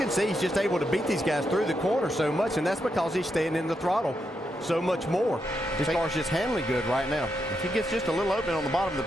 see he's just able to beat these guys through the corner so much, and that's because he's staying in the throttle so much more. His car's just handling good right now. If he gets just a little open on the bottom of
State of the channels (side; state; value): both; normal; correlation 0.83